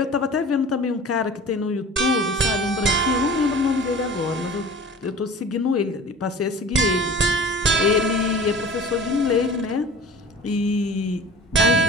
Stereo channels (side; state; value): both; normal; correlation 0.41